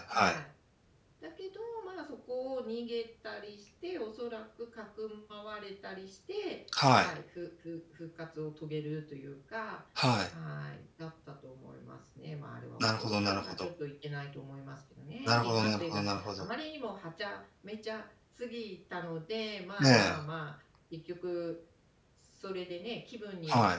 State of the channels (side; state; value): both; identical; correlation 1.00